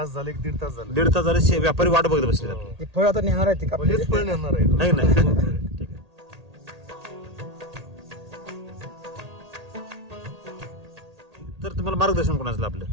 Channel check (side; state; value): left; late; 1.8 ms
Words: झाले 1.5 तास झाले 1.5 तास झाले व्यापारी वाट बघत बसलेत आपली. ते फळ आता नेणार आहे ते का हेच फळ येणार आहे आहे की नाही? ठीक आहे. तर तुम्हाला मार्गदर्शन कोणाचं आपलं?